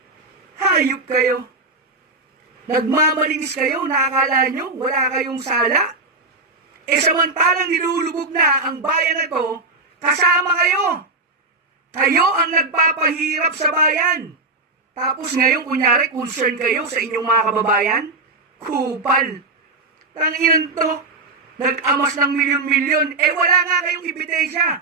Hayop kayo. Nagmamalinis kayo, nakakala nyo, wala kayong sala. Samantalang nilulubog na ang bayan na to, kasama kayo. Kayo ang nagpapahirap sa bayan. Tapos ngayon, kunyari, concern kayo sa inyong mga kababayan? Kupal. Tanginan to. Nag-amas ng milyon-milyon. Wala nga kayong ebidensya.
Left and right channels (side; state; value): left; quieter; 3.2 dB